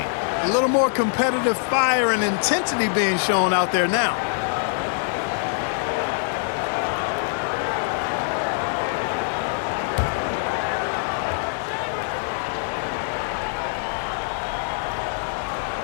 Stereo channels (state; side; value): silent; right; digital silence